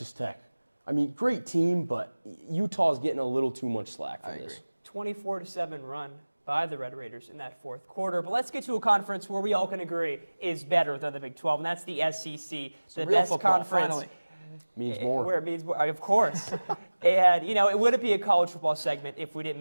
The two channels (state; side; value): inverted; both; correlation -1.00